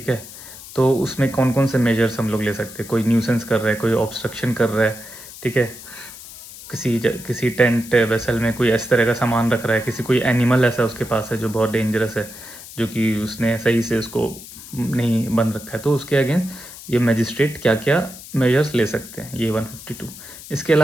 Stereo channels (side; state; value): left; noise; hiss, 15 dB below the sound